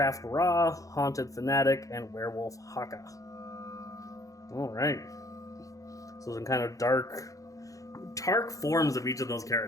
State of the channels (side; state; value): right; late; 0.16 ms